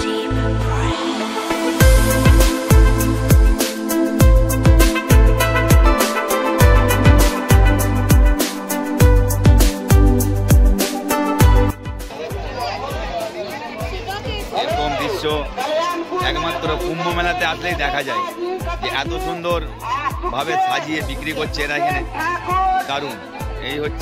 একমাত্র কুম্ভ মেলাতে আসলেই দেখা যায় যে এত সুন্দর ভাবে সাজিয়ে বিক্রি করছে এরা এখানে, দারুণ। এই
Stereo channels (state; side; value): identical; both; correlation 1.00